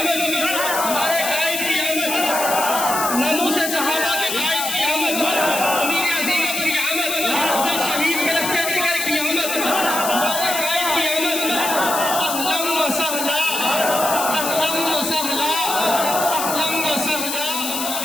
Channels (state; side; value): noise; left; hiss, 3 dB below the sound